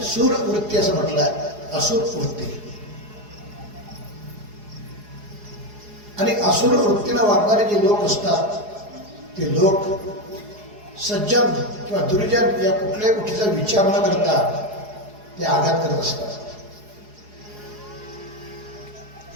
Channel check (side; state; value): left; late; 4.8 ms